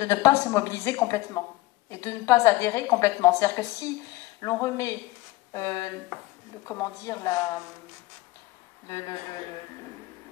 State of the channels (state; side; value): quieter; right; 18.7 dB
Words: ne pas se mobiliser complètement et de ne pas adhérer complètement. C'est-à-dire que si l'on remet,